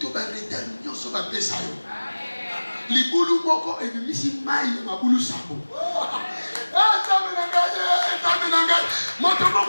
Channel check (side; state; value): both; inverted; correlation -1.00